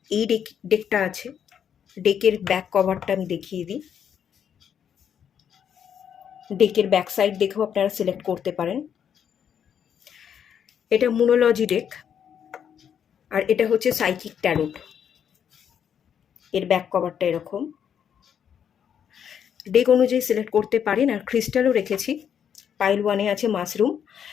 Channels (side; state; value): right; quieter; 8.4 dB